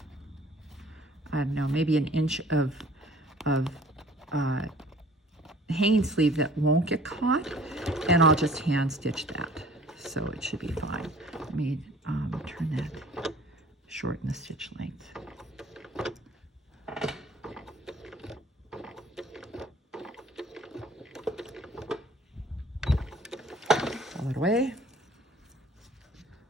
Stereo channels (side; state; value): both; normal; correlation 0.51